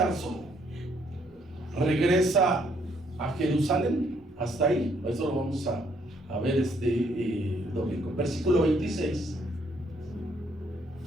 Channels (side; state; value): both; normal; correlation 0.69